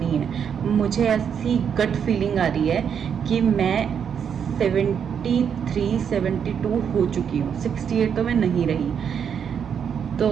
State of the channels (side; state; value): left; quieter; 7.6 dB